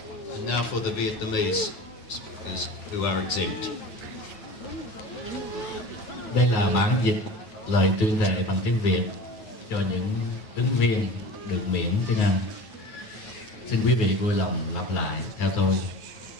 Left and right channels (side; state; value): right; late; 9.4 ms